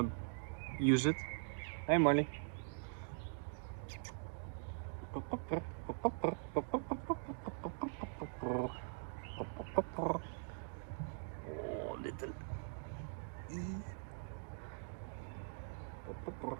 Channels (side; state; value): left; silent; digital silence